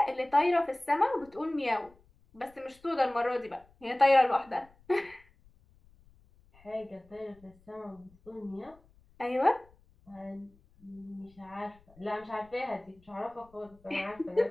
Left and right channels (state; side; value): noise; left; rumble, 29 dB below the sound